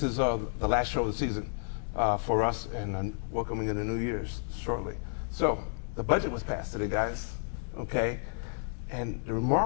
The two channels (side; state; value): right; silent; digital silence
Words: is the last show of the season for us, and welcoming in the New Year's shortly. So the budget was passed today, guys, okay? And the